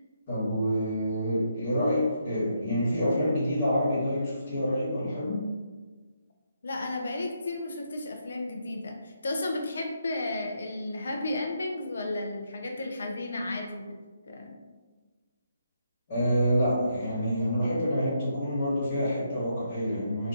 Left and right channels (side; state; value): both; inverted; correlation -0.78